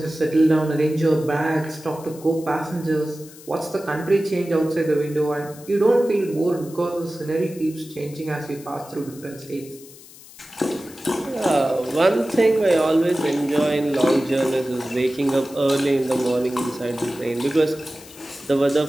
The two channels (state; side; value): noise; left; hiss, 20 dB below the sound